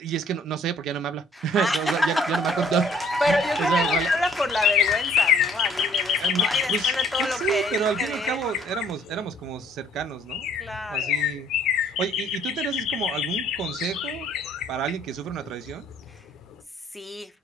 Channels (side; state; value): both; normal; correlation 0.60